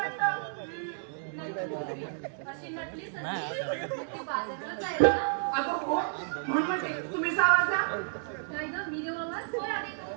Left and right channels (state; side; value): silent; left; digital silence